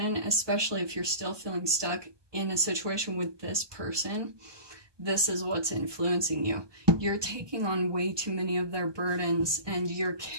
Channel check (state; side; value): late; left; 1.2 ms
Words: especially if you're still feeling stuck in a situation with this person, this is what's influencing you. You're taking on way too many of their burdens, and you're